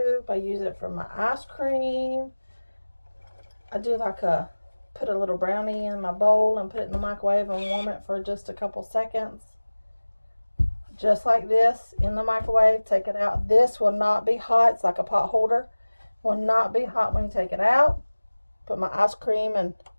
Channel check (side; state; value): both; inverted; correlation -1.00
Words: I use it for my ice cream. I do like put a little brownie in my bowl and put it in the microwave and warm it for just a couple seconds. Just like this, in the microwave, take it out. This will not be hot. It's like a pot holder. Will not be hot when you take it out. Put my ice cream and